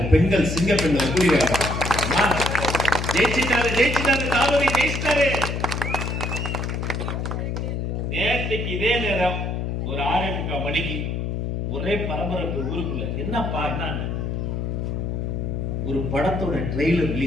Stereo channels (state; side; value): noise; left; hum, 2 dB below the sound